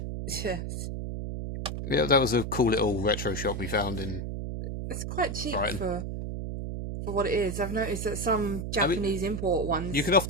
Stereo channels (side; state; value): right; noise; hum, 5 dB below the sound